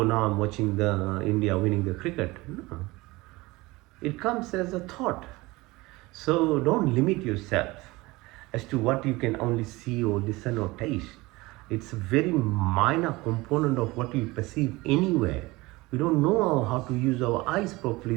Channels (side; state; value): left; quieter; 21.5 dB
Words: now I'm watching the India winning the cricket. No. It comes as a thought. So don't limit yourself as to what you can only see or listen or taste. It's a very minor component of what we perceive anywhere. We don't know how to use our eyes